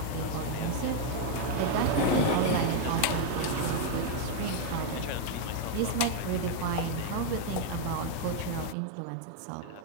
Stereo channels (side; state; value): both; different; correlation 0.00